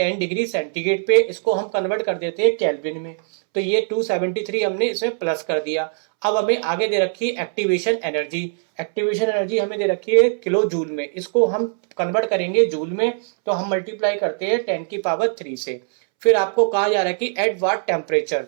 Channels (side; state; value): left; silent; 65 dB below the other